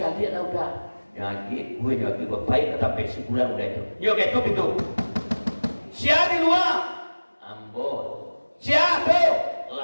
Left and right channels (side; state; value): both; inverted; correlation -1.00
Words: lah udah nyagi gue nyagi baik sampai sebulan udah itu yuk itu siapa di luar ambo siapa